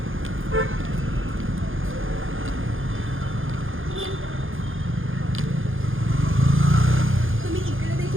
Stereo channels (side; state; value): left; late; 0.59 ms